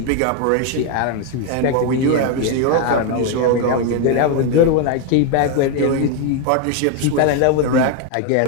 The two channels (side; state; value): both; different; correlation 0.01